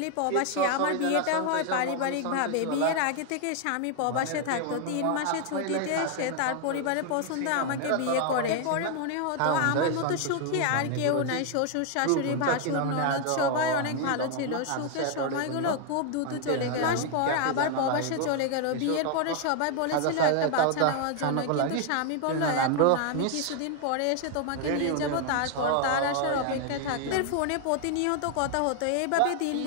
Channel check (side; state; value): both; different; correlation 0.00